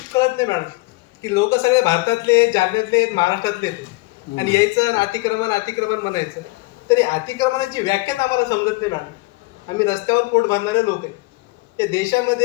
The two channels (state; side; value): quieter; right; 24.0 dB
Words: कळत नाही मॅडम की लोक सगळे भारतातले जालन्यातले महाराष्ट्रातले आहेत आणि यायचं आणि अतिक्रमण अतिक्रमण म्हणायचं. तरी अतिक्रमणाची व्याख्याच आम्हाला समजत नाही मॅडम. आम्ही रस्त्यावर पोट भरणारे लोक आहे. या